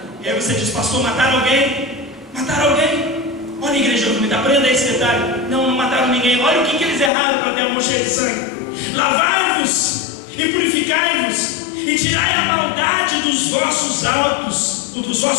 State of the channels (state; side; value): drops out; right; at 7.1 s